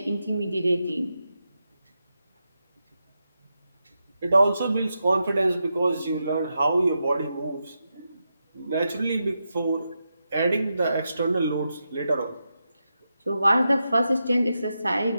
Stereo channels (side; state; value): both; inverted; correlation -0.87